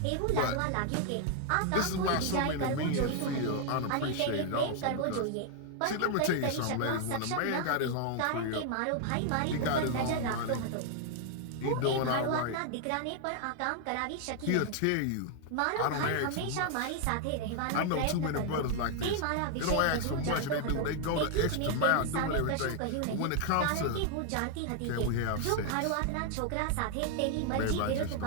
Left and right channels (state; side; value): different; both; correlation 0.00